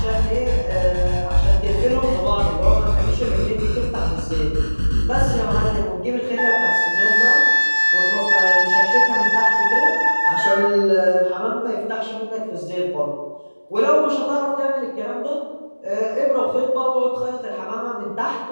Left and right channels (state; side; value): inverted; both; correlation -1.00